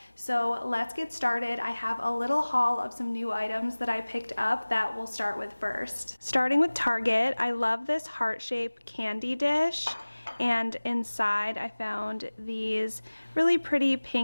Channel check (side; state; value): both; inverted; correlation -1.00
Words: So let's get started. I have a little haul of some new items that I picked up that we'll start with first. Starting with Target, I love this heart-shaped candy dish, and inside I found these really pretty